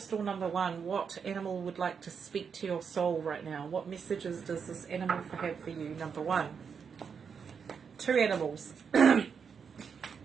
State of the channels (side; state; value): left; quieter; 6.4 dB